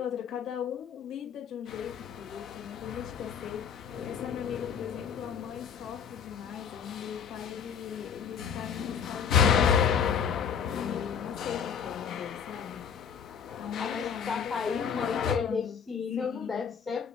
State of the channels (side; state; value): right; quieter; 7.3 dB